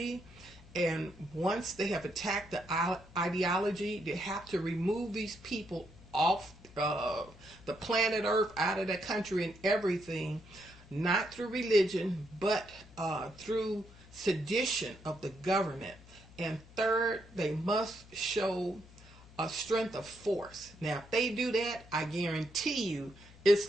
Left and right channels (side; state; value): left; noise; hum, 21 dB below the sound